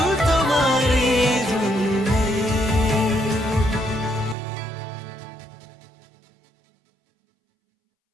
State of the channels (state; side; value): drops out; left; at 4.4 s